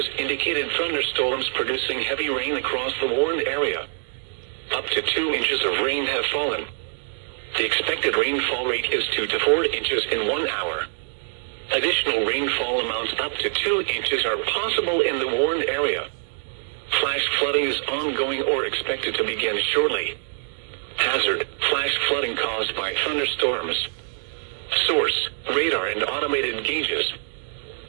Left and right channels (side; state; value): left; silent; digital silence